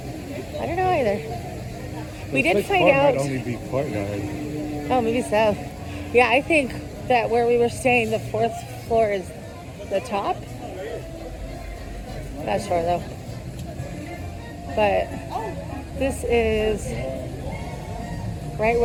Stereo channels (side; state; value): both; identical; correlation 1.00